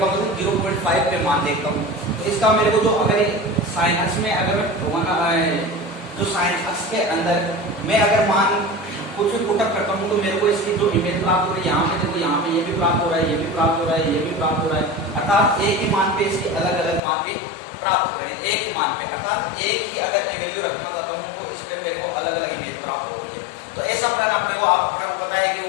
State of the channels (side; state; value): right; drops out; at 17.0 s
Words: मतलब 0.5 पे मान देखता हूँ। तो इसका मेरे को जो अगर साइन अक्ष में अगर मैं जो साइन अक्ष के अंदर मैं अगर मान कुछ भी पुटअप करता हूँ तो मेरे को इसकी जो इमेज प्राप्त हो रही है, यहाँ पे देखो, यहाँ पे ये भी प्राप्त हो रहा है, ये भी प्राप्त हो रहा है, ये भी प्राप्त हो रहा है। अर्थात एक ही मान पे इसके अलग अलग मान भी प्राप्त हो रहे हैं, एक ही मान पे। अर्थात एक ही अगर वैल्यू रखना चाहता हूँ तो इस पे मेरे को अलग अलग इमेज प्राप्त हो रही है। तो ऐसा प्लान आपने को पता है कि